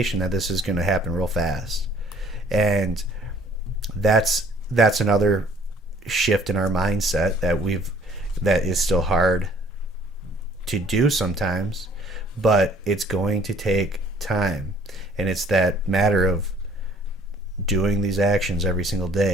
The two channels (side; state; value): both; normal; correlation 0.58